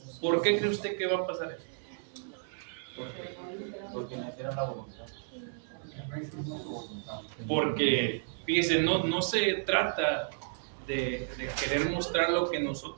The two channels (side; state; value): left; silent; 55 dB below the other